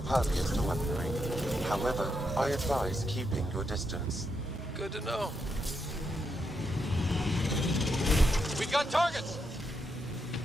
to weaponry. However, I advise keeping your distance. Good to know. We've got targets!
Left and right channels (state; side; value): normal; both; correlation 0.82